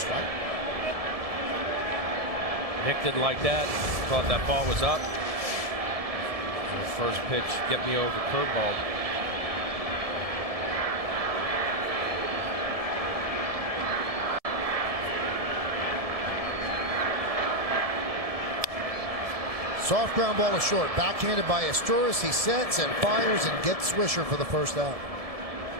Nick didn't like that. Thought that ball was up. The first pitch, get me over curveball. Soft ground ball to short. Backhanded by Asturias. He sets and fires and gets Swisher for the first out.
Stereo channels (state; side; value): late; left; 1.7 ms